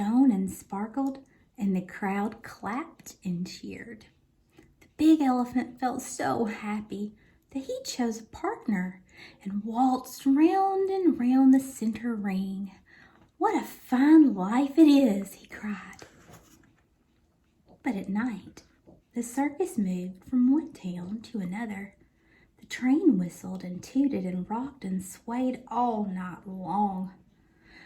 and sparkled, and the crowd clapped and cheered. The big elephant felt so happy that he chose a partner and waltzed round and round the center ring. "What a fine life it is," he cried. But at night, the circus moved from one town to another. The train whistled and tooted and rocked and swayed all night long.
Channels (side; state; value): both; identical; correlation 1.00